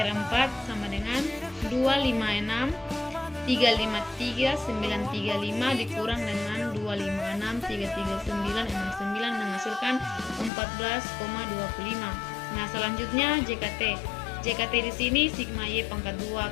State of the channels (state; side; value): drops out; right; at 10.5 s